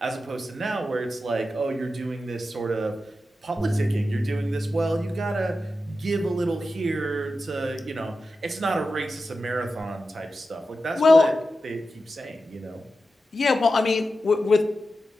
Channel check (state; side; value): normal; both; correlation 0.91